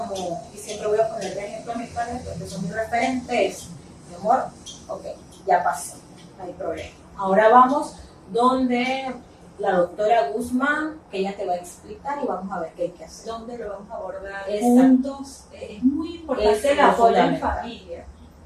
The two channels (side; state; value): both; identical; correlation 1.00